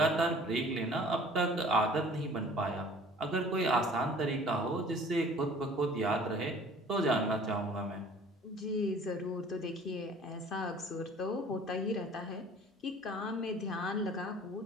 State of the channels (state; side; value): normal; both; correlation 0.50